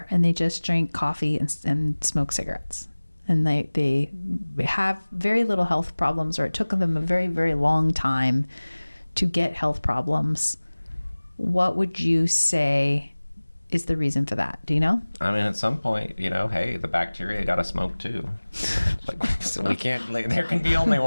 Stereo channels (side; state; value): both; inverted; correlation -1.00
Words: and they just drink coffee and smoke cigarettes. And they have very little health problems, or it took them a very, very long time to get health problems. What would you say is the reason for that? Do you know? I mean, at some point, hey, the bacteria got to smoke too. So we can't. There can be only